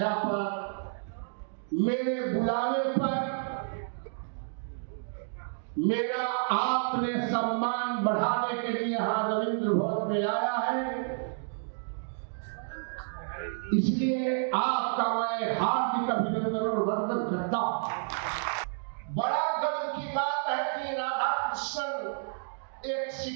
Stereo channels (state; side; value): silent; left; digital silence